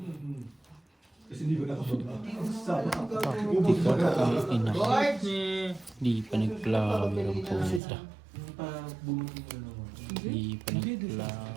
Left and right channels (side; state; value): left; drops out; at 7.8 s